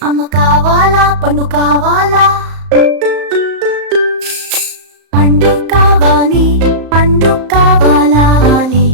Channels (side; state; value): left; late; 35 ms